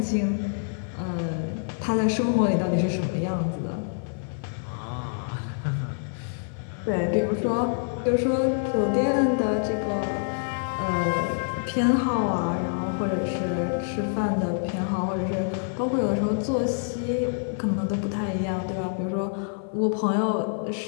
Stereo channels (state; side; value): silent; right; 56 dB below the other